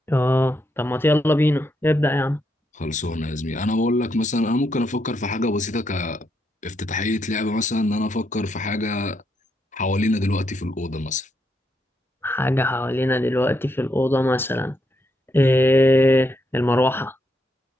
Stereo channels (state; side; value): normal; both; correlation 0.79